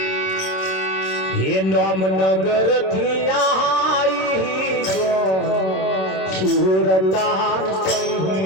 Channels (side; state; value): right; late; 26 ms